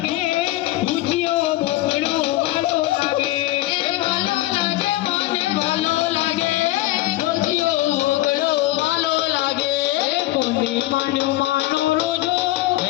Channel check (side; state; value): right; quieter; 16.8 dB